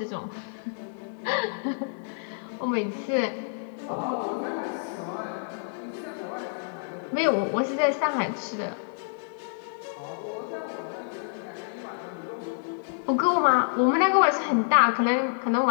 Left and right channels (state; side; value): silent; right; digital silence